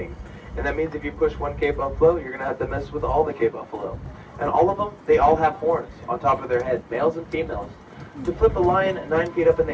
And that means if you push one Cape buffalo, you're going to have to mess with all the Cape buffalo. And all of them, they all have horns on top of their head, males and females. To flip a lion 9 feet up in the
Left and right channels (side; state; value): both; identical; correlation 1.00